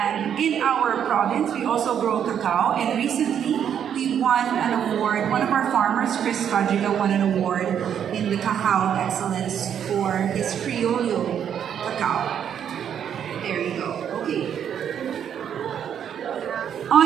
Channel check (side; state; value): left; quieter; 8.8 dB